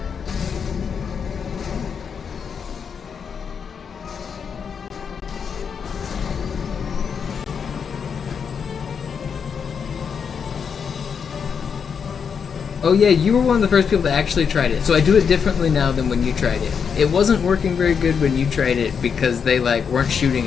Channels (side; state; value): right; quieter; 6.6 dB